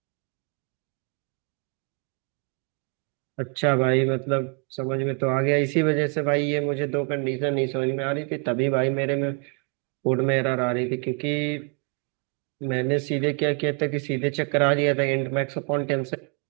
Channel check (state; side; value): quieter; left; 37.0 dB